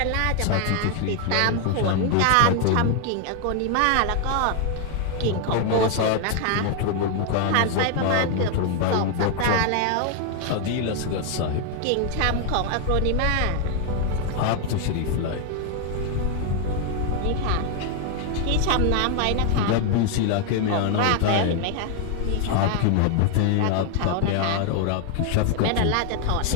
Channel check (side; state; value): both; different; correlation 0.00